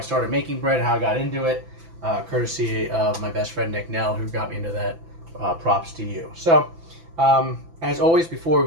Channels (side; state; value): left; late; 6.0 ms